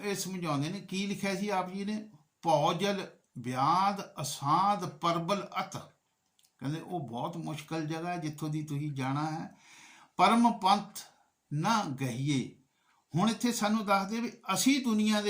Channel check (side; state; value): both; identical; correlation 1.00